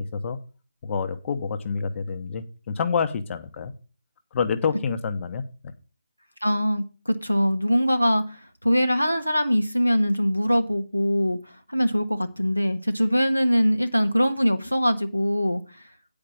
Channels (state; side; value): inverted; both; correlation -0.94